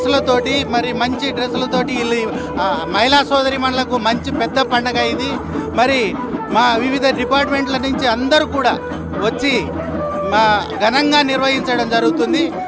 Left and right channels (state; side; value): identical; both; correlation 1.00